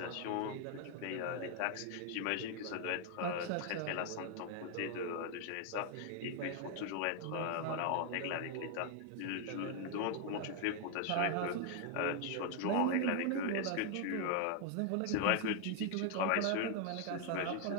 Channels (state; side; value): different; both; correlation 0.00